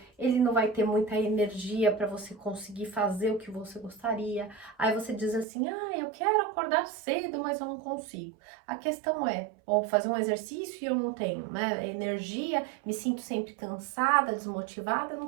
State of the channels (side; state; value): left; drops out; at 5.5 s